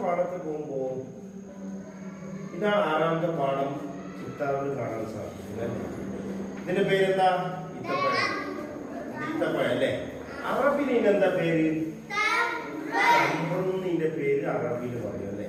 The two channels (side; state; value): both; identical; correlation 1.00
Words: പാഠത്തിൽ പോകുമ്പോ ഇതാണ് ആറാമത്തെ പാഠം. ചിത്താറിൽ കാണാൻ സാധിക്കും. ഇതിന്റെ പേരെന്താ? ഈത്തപ്പഴം. ഈത്തപ്പഴം അല്ലേ? അറബിയിൽ ഇതിനെന്താ പേര്? തമ്പ്രൂന്നിന്റെ പേര് അറബിയിൽ പറയും അല്ലേ?